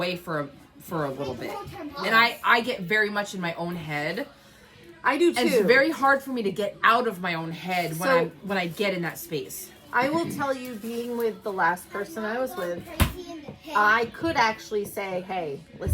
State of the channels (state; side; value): identical; both; correlation 1.00